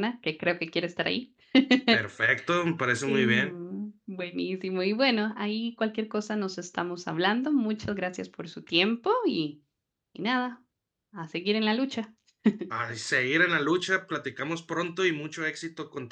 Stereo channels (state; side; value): identical; both; correlation 1.00